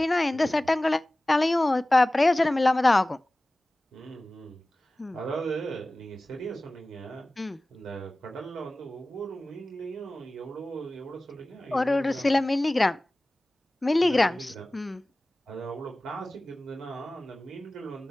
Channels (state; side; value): normal; both; correlation 0.97